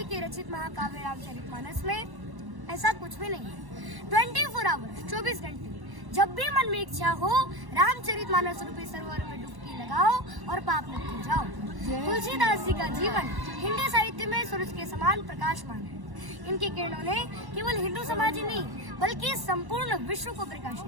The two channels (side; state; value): left; late; 1.1 ms